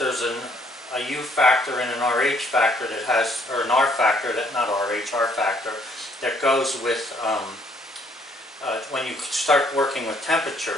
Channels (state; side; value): normal; both; correlation 0.65